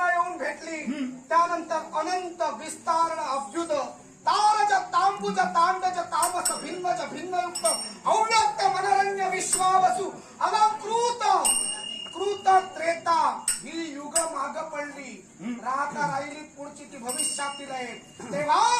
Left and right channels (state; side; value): identical; both; correlation 1.00